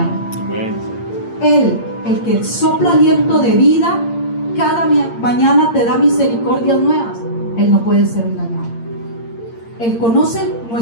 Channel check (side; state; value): right; late; 8.7 ms